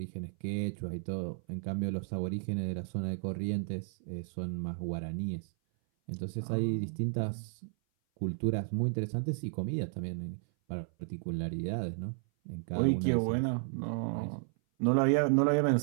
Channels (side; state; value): left; silent; 56 dB below the other